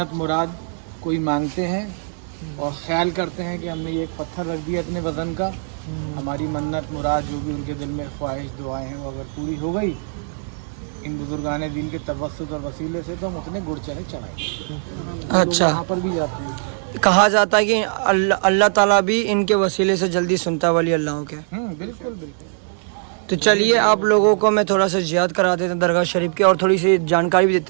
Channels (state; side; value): silent; left; digital silence